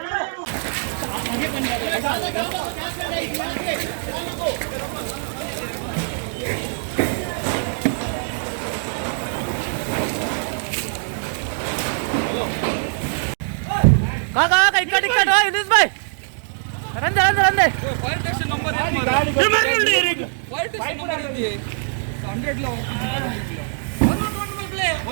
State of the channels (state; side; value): silent; left; digital silence